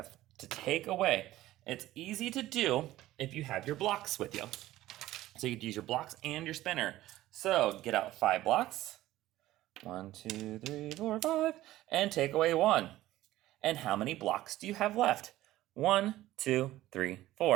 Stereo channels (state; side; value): quieter; left; 15.5 dB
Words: to take away. It's easy to do if you have your blocks with you. So you could use your blocks and your spinner. So get out 5 blocks. 1, 2, 3, 4, 5. And take away 1. And how many blocks do you have left? 1, 2, 3,